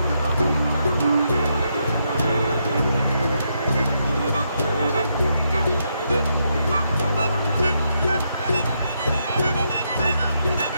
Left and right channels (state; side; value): inverted; both; correlation -0.79